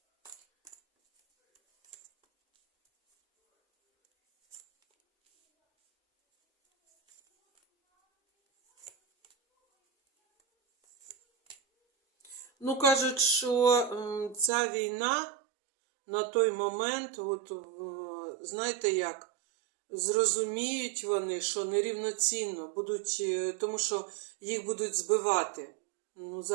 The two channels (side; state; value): left; drops out; at 14.5 s